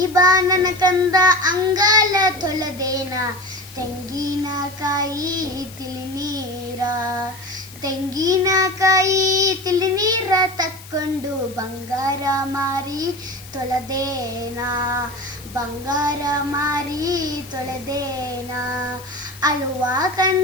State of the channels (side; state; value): left; noise; hiss, 18 dB below the sound